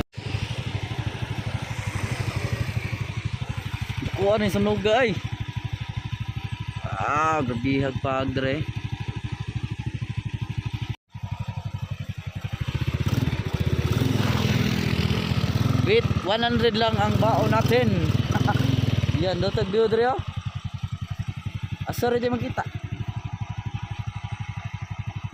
Kuha na yung sunog ay. Gabihag pag dre. Wait, 100 lang ang baon natin. Yan, dotag view dre oh. Asar di makita.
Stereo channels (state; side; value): identical; both; correlation 1.00